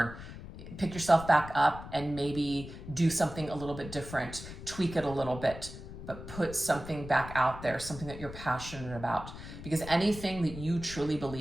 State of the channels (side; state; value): left; noise; rumble, 12 dB below the sound